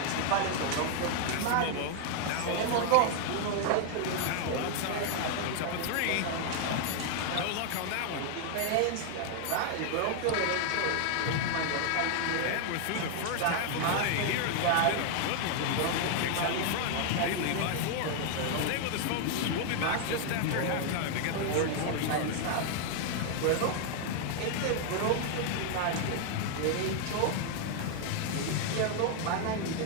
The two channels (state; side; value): different; both; correlation 0.00